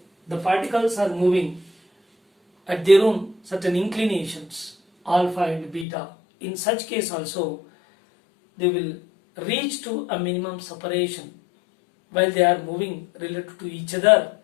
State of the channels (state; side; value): drops out; right; at 5.9 s